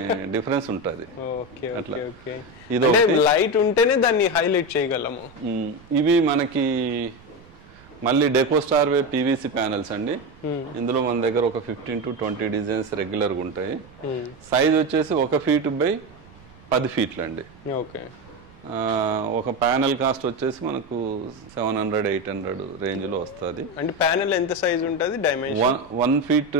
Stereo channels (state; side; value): noise; right; rumble, 24 dB below the sound